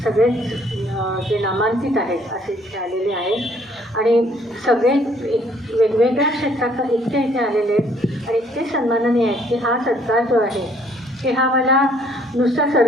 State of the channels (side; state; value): both; normal; correlation 0.63